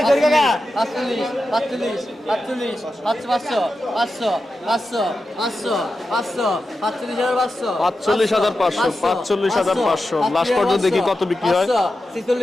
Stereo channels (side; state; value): both; normal; correlation 0.91